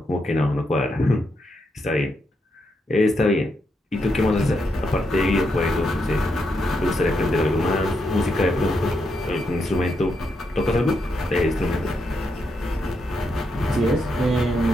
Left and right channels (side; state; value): both; normal; correlation 0.81